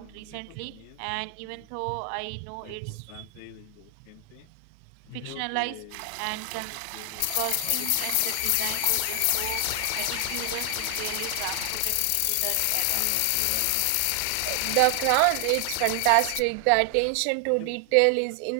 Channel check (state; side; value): different; both; correlation 0.00